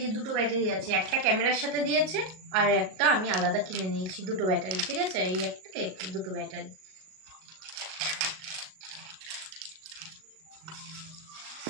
যে দুটো ব্যাটারি আছে, একটা ক্যামেরার সাথে দিয়েছে আর একটা আমি আলাদা কিনে নিয়েছি, দুটো ব্যাটারি, ঠিক আছে। এই একটা দুটো ব্যাটারি।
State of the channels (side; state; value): left; late; 38 ms